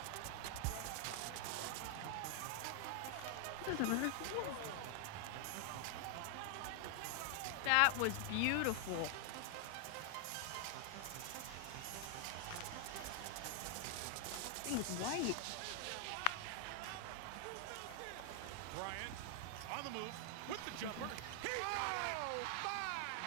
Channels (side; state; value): both; different; correlation 0.00